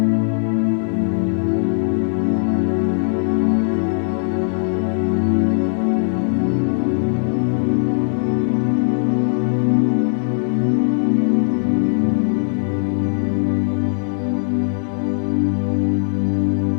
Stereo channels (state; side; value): silent; right; digital silence